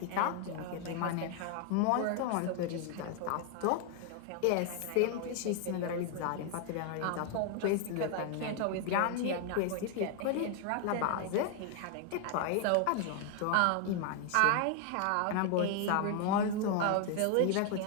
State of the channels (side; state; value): both; different; correlation 0.00